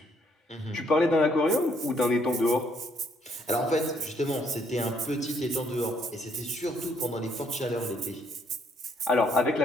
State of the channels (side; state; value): both; normal; correlation 0.69